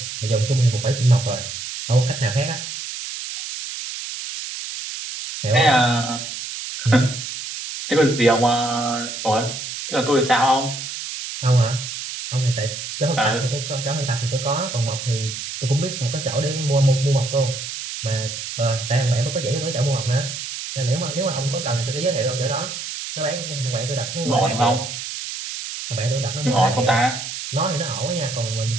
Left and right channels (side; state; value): right; noise; hiss, 7 dB below the sound